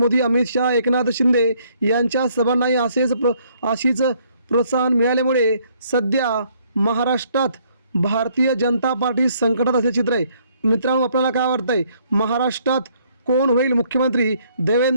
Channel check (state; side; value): inverted; both; correlation -0.66